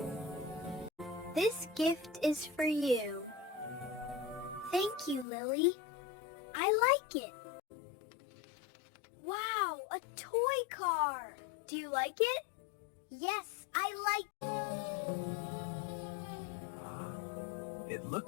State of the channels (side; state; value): right; drops out; at 5.2 s